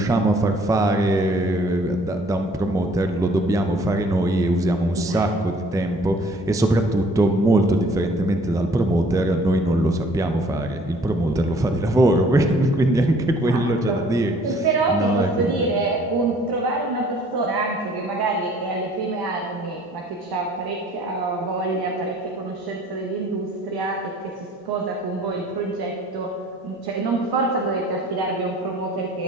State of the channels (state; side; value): normal; both; correlation 0.56